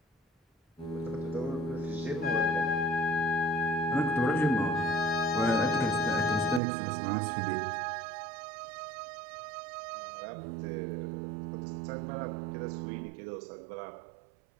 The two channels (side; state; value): left; drops out; at 6.6 s